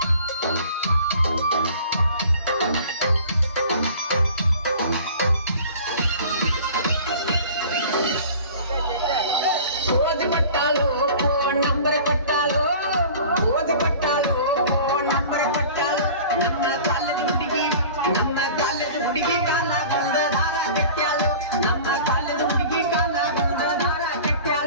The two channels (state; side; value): inverted; both; correlation -0.43